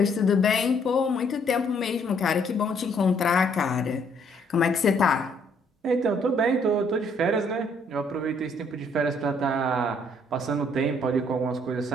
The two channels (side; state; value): both; normal; correlation 0.66